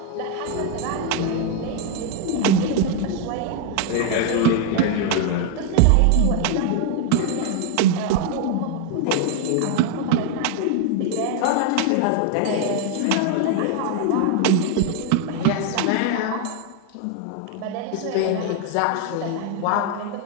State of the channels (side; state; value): both; different; correlation 0.01